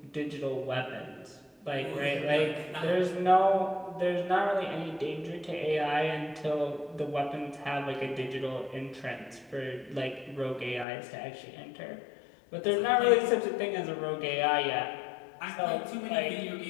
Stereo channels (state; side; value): drops out; right; at 10.9 s